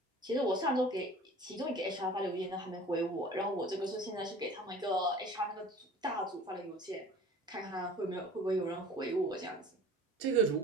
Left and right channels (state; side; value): normal; both; correlation 0.43